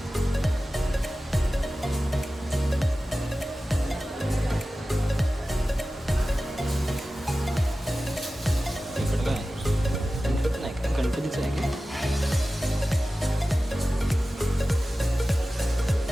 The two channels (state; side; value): normal; both; correlation 0.95